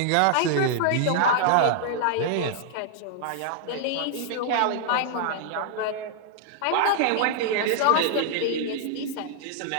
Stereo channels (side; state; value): both; different; correlation -0.01